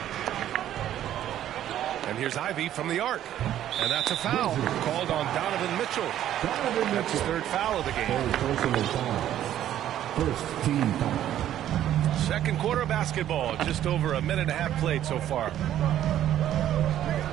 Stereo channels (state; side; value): quieter; left; 11.7 dB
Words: And here's Ivy from the arc. And that's a foul called on Donovan Mitchell. That's his 3rd foul of the game. First team foul. Second quarter basketball. Just over a minute and a half played so far.